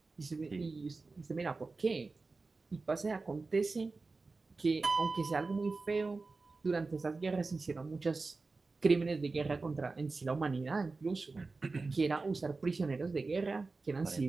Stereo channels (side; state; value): left; quieter; 3.8 dB